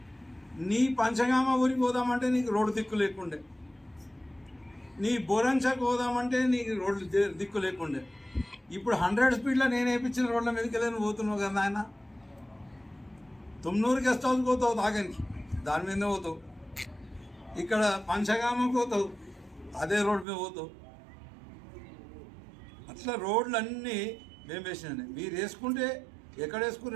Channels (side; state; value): left; drops out; at 20.2 s